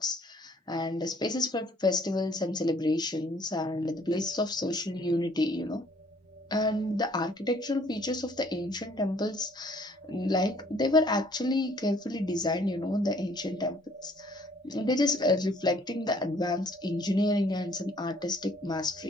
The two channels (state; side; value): normal; both; correlation 0.60